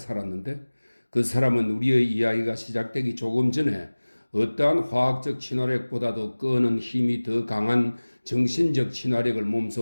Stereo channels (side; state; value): both; inverted; correlation -1.00